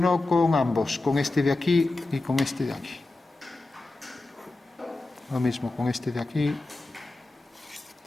con ambos, con este de aquí y con este de aquí. Lo mismo con este de aquí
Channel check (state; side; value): quieter; right; 3.1 dB